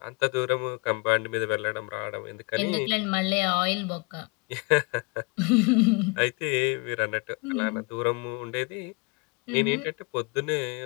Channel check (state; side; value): quieter; right; 29.3 dB